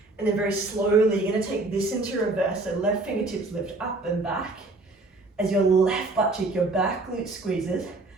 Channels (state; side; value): quieter; left; 3.1 dB